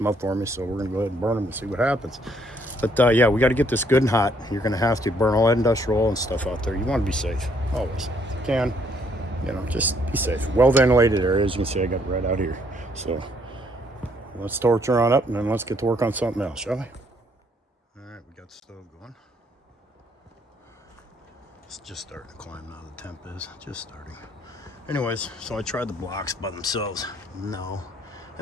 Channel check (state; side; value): normal; both; correlation 0.67